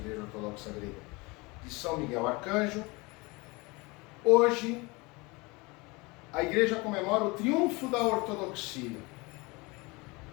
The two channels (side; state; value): right; quieter; 25.4 dB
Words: Ortodoxa Grega de São Miguel Arcanjo. Hoje, a Igreja comemora o triunfo da ortodoxia.